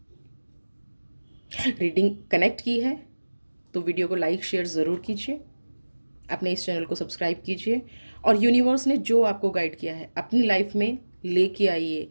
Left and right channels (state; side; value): inverted; both; correlation -1.00